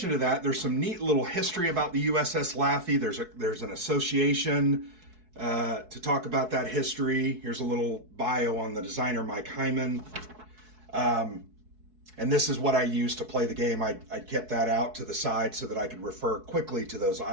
to that, there's some neat little history about the USS Laffey. There's an association to talk about that history. Here's a little bio on the designer, Mike Hyman. And this is what I used to play the game. I kept that out to the side so that I could refer quickly to those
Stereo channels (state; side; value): late; left; 4.6 ms